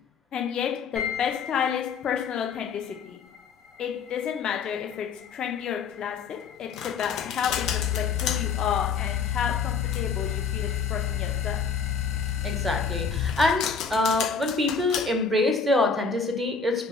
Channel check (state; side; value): quieter; right; 5.4 dB